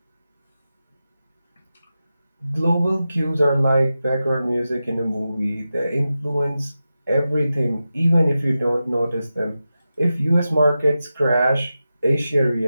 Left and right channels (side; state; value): both; inverted; correlation -0.92